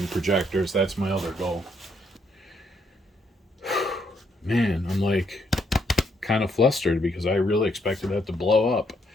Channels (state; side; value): normal; both; correlation 0.73